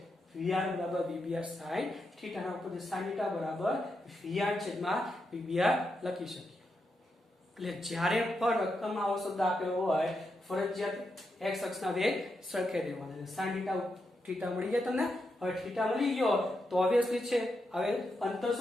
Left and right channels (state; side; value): normal; both; correlation 0.85